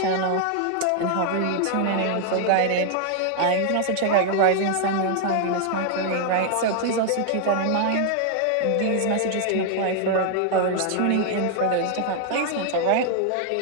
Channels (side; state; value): both; different; correlation 0.00